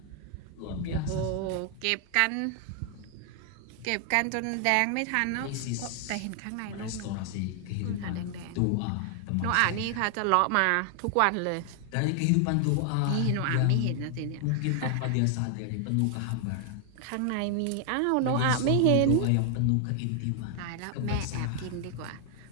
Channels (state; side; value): different; both; correlation 0.00